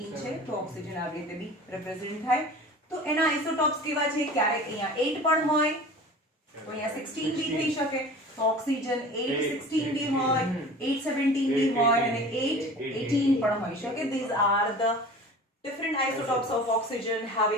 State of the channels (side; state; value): both; normal; correlation 0.40